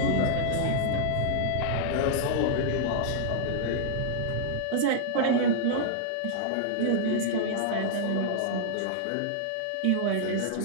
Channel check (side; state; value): both; different; correlation -0.01